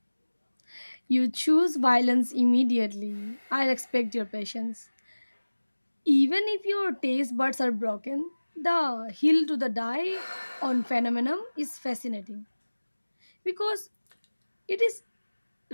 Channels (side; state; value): both; inverted; correlation -1.00